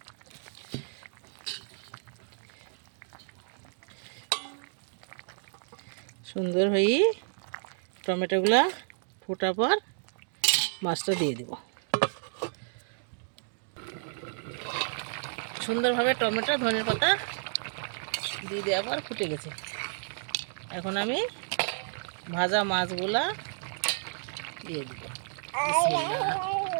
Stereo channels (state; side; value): silent; left; digital silence